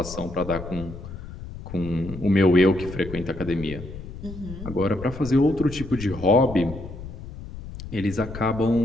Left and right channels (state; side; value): noise; left; rumble, 11 dB below the sound